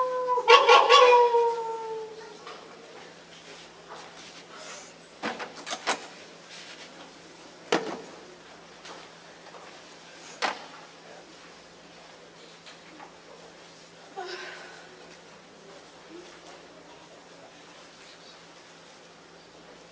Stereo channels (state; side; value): identical; both; correlation 1.00